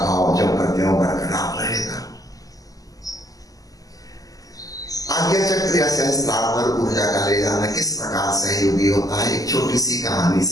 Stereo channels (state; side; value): late; right; 0.17 ms